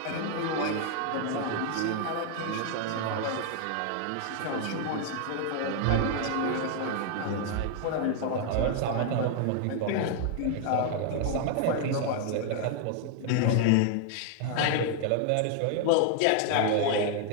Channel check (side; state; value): both; different; correlation 0.00